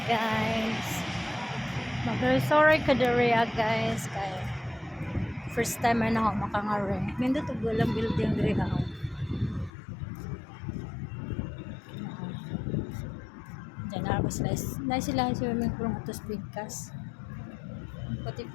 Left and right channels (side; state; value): right; drops out; at 9.7 s